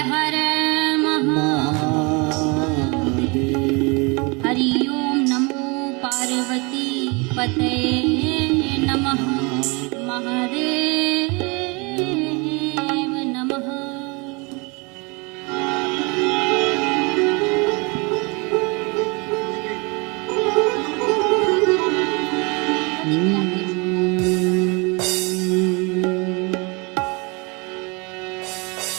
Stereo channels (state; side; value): quieter; left; 29.4 dB